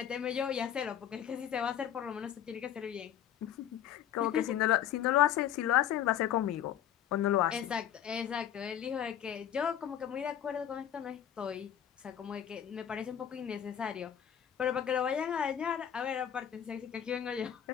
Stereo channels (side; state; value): right; quieter; 9.9 dB